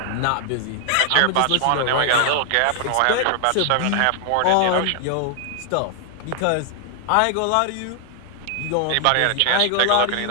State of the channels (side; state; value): both; different; correlation 0.00